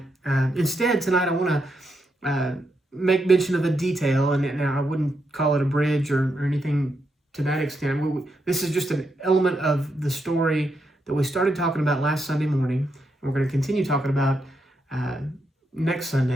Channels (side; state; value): both; normal; correlation 0.82